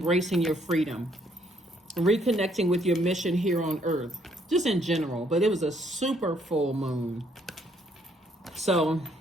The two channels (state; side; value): normal; both; correlation 0.68